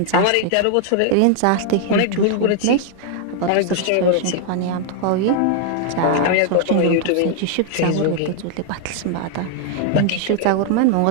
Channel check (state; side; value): different; both; correlation 0.00